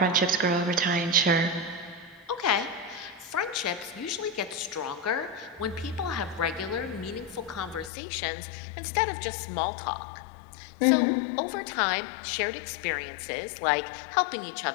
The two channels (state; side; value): drops out; right; at 7.9 s